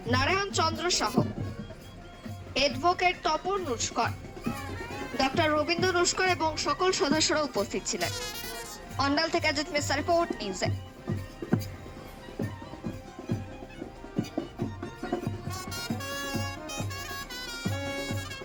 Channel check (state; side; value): identical; both; correlation 1.00